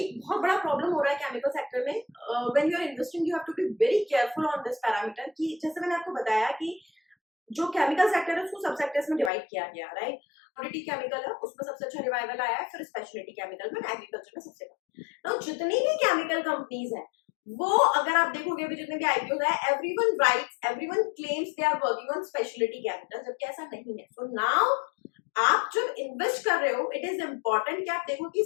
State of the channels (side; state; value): right; drops out; at 9.3 s